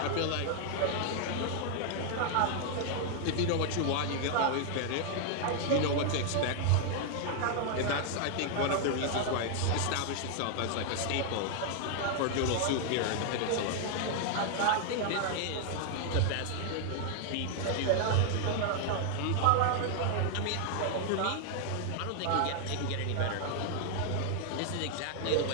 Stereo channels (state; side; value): different; both; correlation 0.00